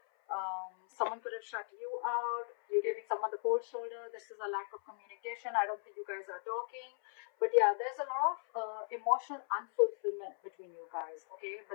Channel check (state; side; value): silent; right; 53 dB below the other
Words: Someone could have shut you out. You're giving someone the cold shoulder. This is a lack of communication. I don't think you guys are talking. But yeah, there's a lot of emotional unfulfillment between you guys, okay?